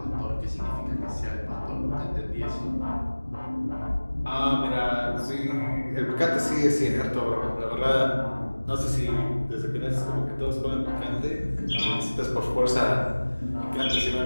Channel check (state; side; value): inverted; both; correlation -1.00